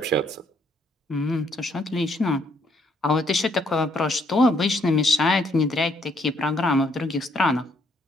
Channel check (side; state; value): both; normal; correlation 0.70